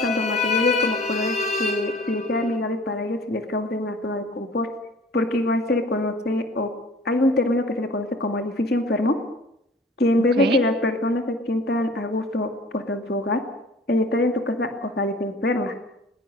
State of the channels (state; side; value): normal; both; correlation 0.48